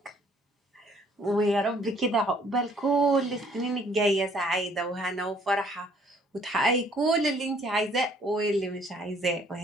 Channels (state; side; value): normal; both; correlation 0.61